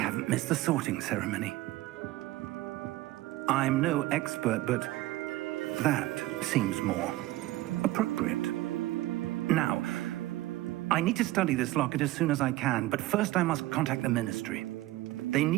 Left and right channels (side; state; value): left; quieter; 17.3 dB